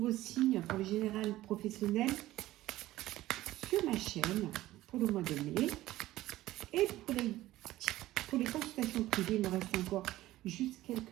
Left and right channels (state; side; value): quieter; left; 15.8 dB